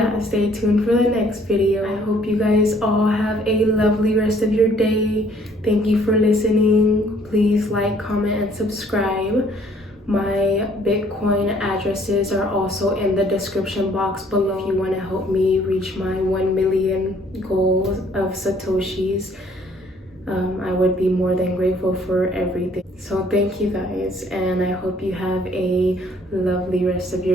stay tuned for the next video. I hope you guys all have a lovely rest of your day. Thank you for listening. Please like, comment, and subscribe. My Bitcoin addresses are also in the description box below if you want to help me reach my 1 million goal of Satoshis. I would be more than grateful for everything. So thank you guys, and I hope you have a lovely rest of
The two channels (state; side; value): normal; both; correlation 0.61